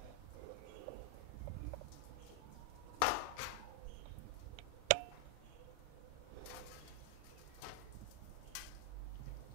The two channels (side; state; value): both; different; correlation 0.00